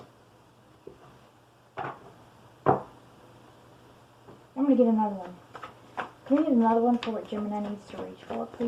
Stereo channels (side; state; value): both; identical; correlation 1.00